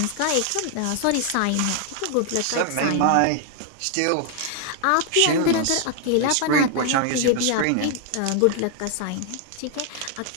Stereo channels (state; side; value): different; both; correlation 0.00